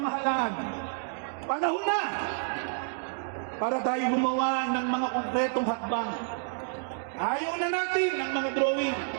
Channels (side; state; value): left; silent; 57 dB below the other